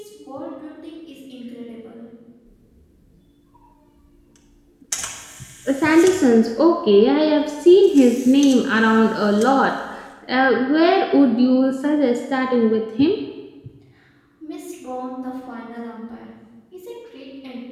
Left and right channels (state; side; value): identical; both; correlation 1.00